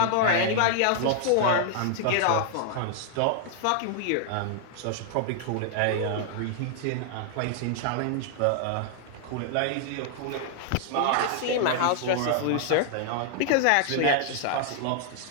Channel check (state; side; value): different; both; correlation -0.01